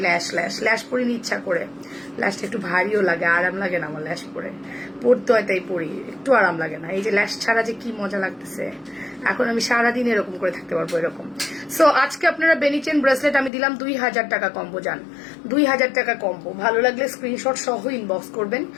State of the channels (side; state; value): right; drops out; at 13.5 s